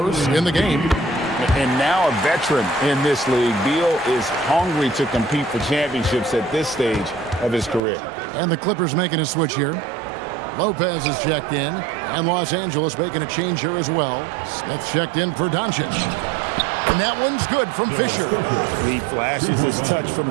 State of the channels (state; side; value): drops out; left; at 7.8 s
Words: in the game. And now a veteran in this league, Beal is hungry to compete for championships at this stage of his career. And the Clippers making a switch here. Lopez is checked in, and Los Angeles making a change here as well. Smith checked in for Doncic. And that one's good from Fisher. He flashes his touch